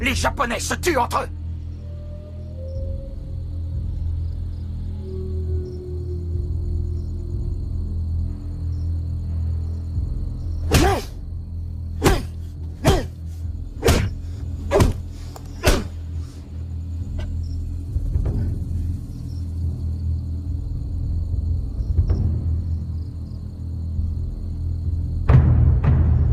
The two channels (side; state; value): both; identical; correlation 1.00